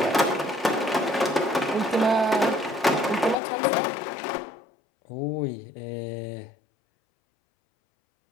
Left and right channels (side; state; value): right; drops out; at 3.4 s